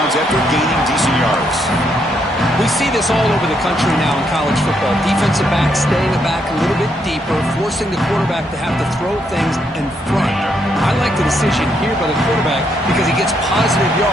after gaining decent yards. We see this all over the country now in college football. Defensive backs staying back a little bit deeper, forcing the quarterback to have to throw things in front. I like the decision here by the quarterback because he gets positive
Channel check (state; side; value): normal; both; correlation 0.76